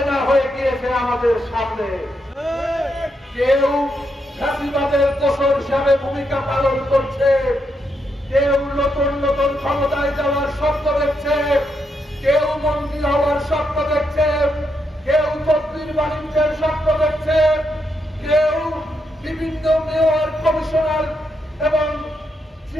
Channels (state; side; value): normal; both; correlation 0.81